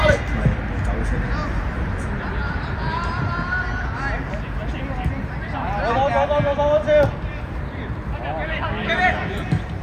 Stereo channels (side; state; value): both; identical; correlation 1.00